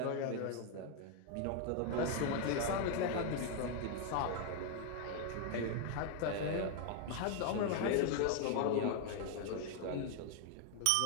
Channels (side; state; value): both; different; correlation 0.00